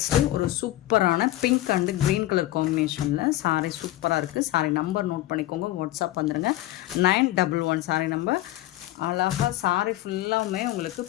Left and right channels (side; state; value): right; quieter; 15.7 dB